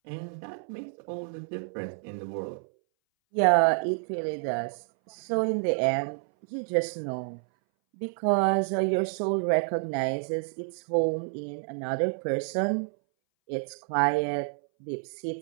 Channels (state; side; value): silent; left; 59 dB below the other